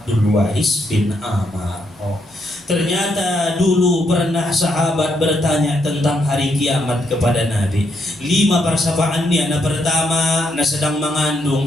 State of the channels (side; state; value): both; normal; correlation 0.77